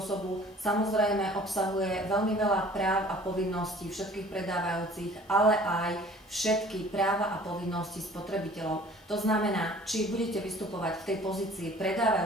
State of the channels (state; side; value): normal; both; correlation 0.50